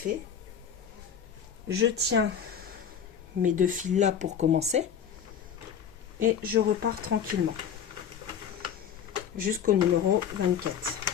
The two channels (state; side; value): quieter; right; 8.0 dB